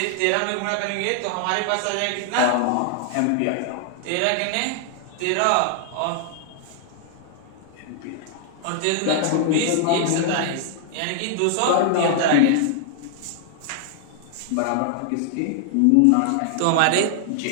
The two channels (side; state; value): both; different; correlation 0.00